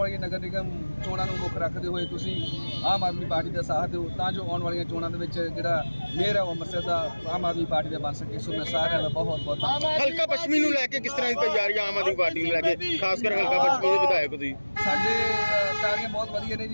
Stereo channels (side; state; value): both; inverted; correlation -1.00